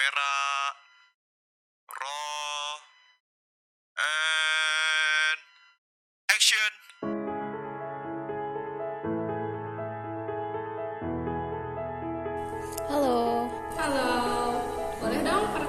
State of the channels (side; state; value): both; identical; correlation 1.00